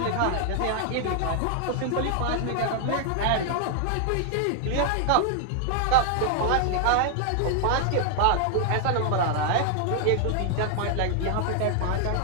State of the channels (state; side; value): different; both; correlation 0.00